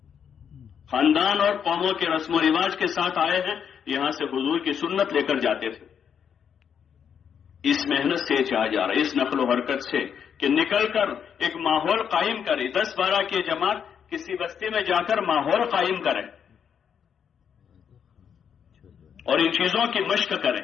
خاندان اور قوموں کے رسم و رواج کے ساتھ آئے ہیں، یہاں سے حضور کی سنت لے کر جاتے تھے۔ اس محنت سے چاہا جا رہا ہے، اس نقل و حرکت سے کہ نکل کر ایک ماحول قائم کرے، 10-12 کی جماعت کسی بستی میں جا کر ماحول قائم کرے اور ان چیزوں کی مشق کریں،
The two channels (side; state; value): right; quieter; 7.7 dB